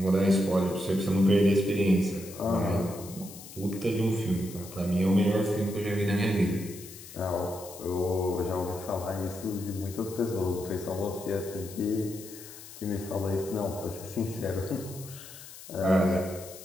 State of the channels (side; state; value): left; noise; hiss, 15 dB below the sound